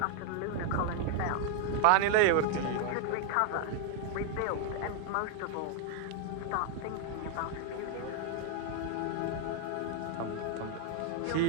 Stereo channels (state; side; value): different; both; correlation 0.00